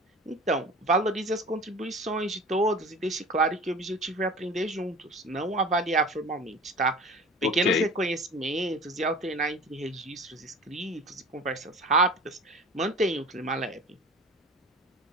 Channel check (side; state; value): both; normal; correlation 0.39